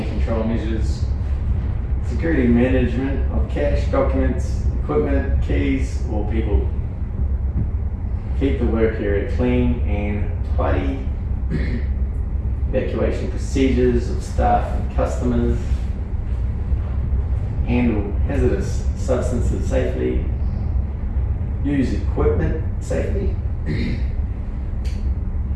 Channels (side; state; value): both; identical; correlation 1.00